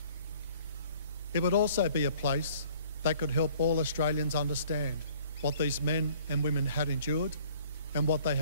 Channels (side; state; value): both; inverted; correlation -0.55